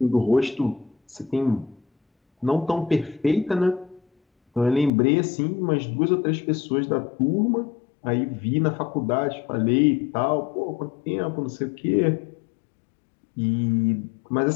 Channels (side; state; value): right; drops out; at 4.9 s